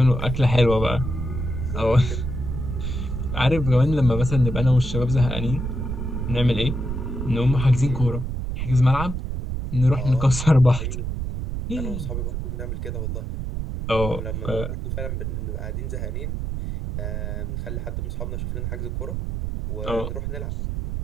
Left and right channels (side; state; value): right; noise; rumble, 3 dB below the sound